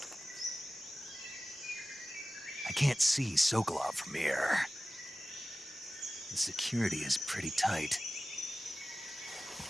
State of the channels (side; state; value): both; normal; correlation 0.96